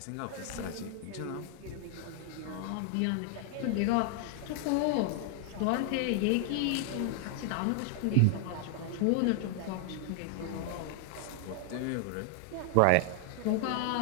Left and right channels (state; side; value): different; both; correlation 0.00